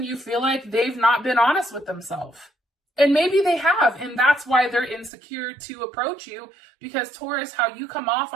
you feel like they've not been honest with themselves. And maybe they have, and that's why they're insecure to approach you, because Taurus, how you come off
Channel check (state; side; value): drops out; left; at 5.1 s